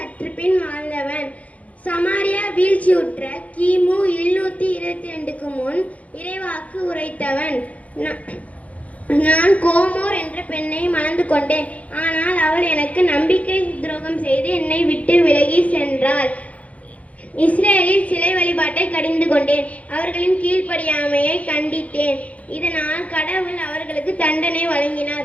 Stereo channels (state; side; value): late; right; 0.067 ms